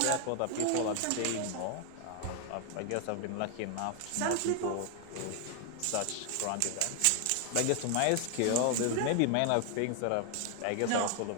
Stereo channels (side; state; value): both; different; correlation 0.00